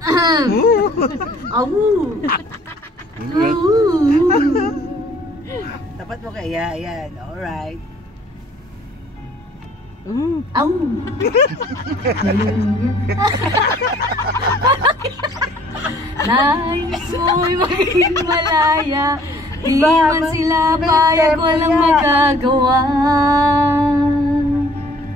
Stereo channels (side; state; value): both; normal; correlation 0.56